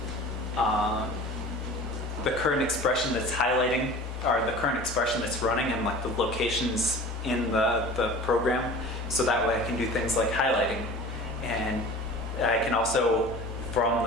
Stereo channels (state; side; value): normal; both; correlation 0.40